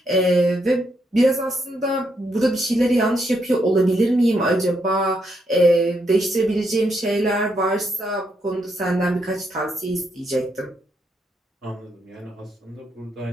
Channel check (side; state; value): both; normal; correlation 0.78